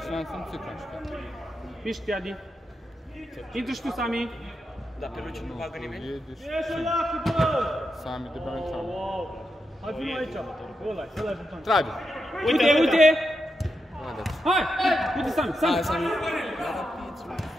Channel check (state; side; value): normal; both; correlation 0.86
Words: n-am simțit că am știut. Mișcă-te, Adi! Intră și tu, Sami! Dar pe Luciu nu bagă nimeni? Sami de bani Sami. Hai, vină aici. Ăla-i buton. Trage! Uite! Hai! Uite Sami!